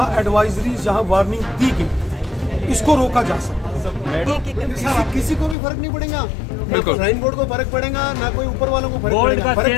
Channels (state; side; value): drops out; right; at 5.6 s